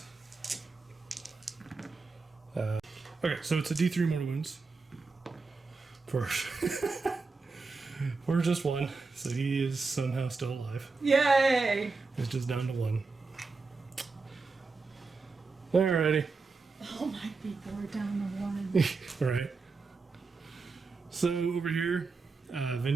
Okay, so it's a D3 mortal wounds. For just 1, so he is somehow still alive. Yay! It's just down to 1. Alrighty. Oh my people, we're down to 1. Right. So over here,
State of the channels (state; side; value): quieter; left; 4.2 dB